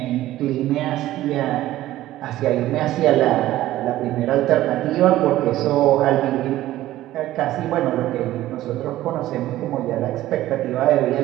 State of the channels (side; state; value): left; quieter; 14.9 dB